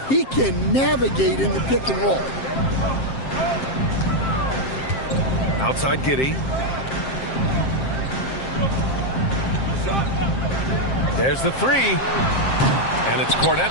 He can navigate in the pick and roll. Outside Giddey. There's the three. And it's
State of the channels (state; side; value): late; right; 7.6 ms